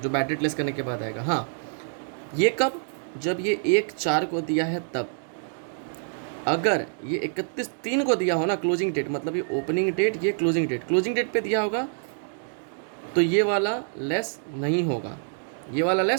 बैड डेट लेस करने के बाद आएगा। हाँ ये कब, जब ये 1/4 को दिया है तब। अगर ये 31/3 को दिया हो ना क्लोजिंग डेट, मतलब ये ओपनिंग डेट, ये क्लोजिंग डेट पे दिया होगा, तो ये वाला लेस नहीं होगा, ये वाला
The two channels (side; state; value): left; silent; digital silence